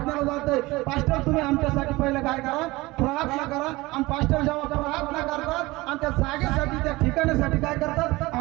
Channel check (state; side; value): quieter; left; 21.0 dB